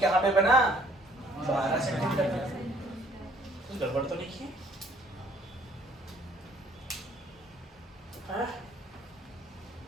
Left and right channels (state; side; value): normal; both; correlation 0.60